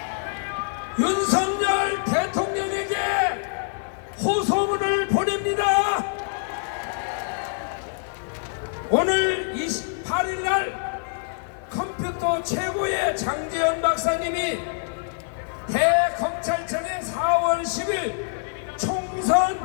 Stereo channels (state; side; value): silent; right; 57 dB below the other